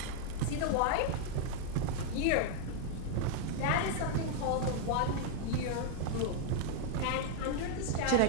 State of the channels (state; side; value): different; both; correlation 0.00